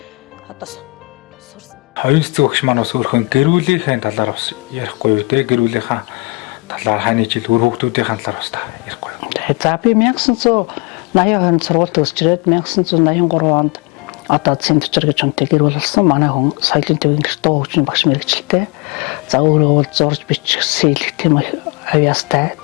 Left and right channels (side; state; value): right; quieter; 27.5 dB